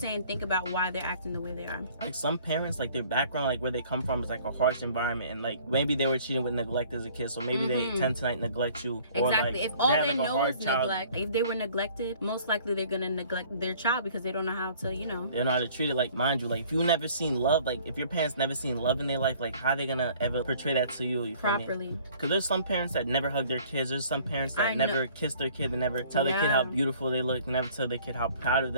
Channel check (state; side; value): inverted; both; correlation -0.54